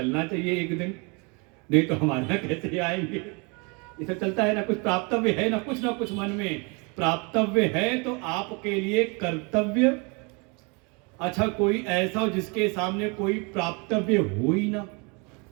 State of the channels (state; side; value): quieter; left; 31.1 dB